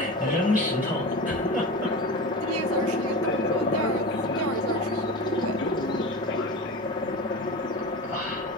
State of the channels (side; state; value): both; normal; correlation 0.29